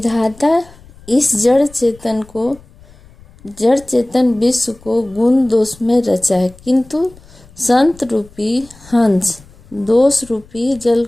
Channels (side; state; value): left; noise; rumble, 24 dB below the sound